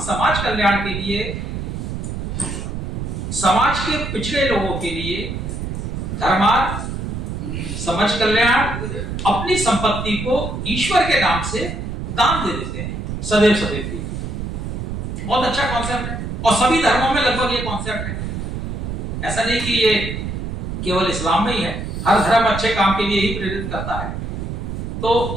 समाज कल्याण के लिए, समाज के पिछड़े लोगों के लिए धर्मार्थ, समाज कल्याण, अपनी संपत्ति को ईश्वर के नाम से दान दे देते हैं सदैव सदैव के लिए। बहुत अच्छा कॉन्सेप्ट है और सभी धर्मों में लगभग ये कॉन्सेप्ट है। ऐसा नहीं कि ये केवल इस्लाम में ही है, हर धर्म अच्छे काम के लिए ही प्रेरित करता है। तो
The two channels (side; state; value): right; noise; rumble, 5 dB below the sound